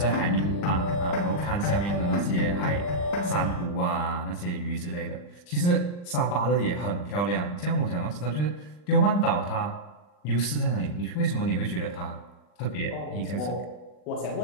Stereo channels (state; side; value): late; right; 40 ms